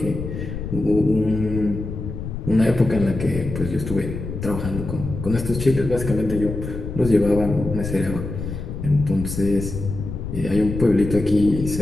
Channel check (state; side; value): noise; left; rumble, 7 dB below the sound